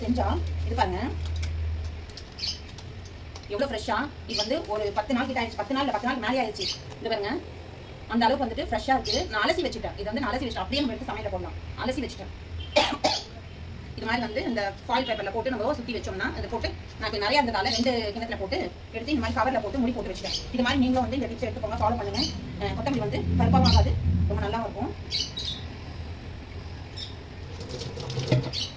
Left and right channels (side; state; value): both; identical; correlation 1.00